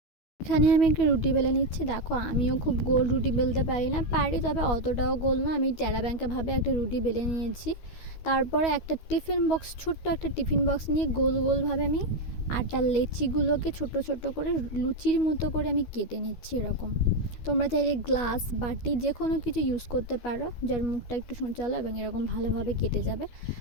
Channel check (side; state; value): right; late; 12 ms